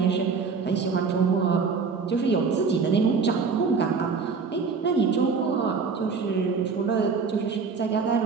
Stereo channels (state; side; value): quieter; left; 5.2 dB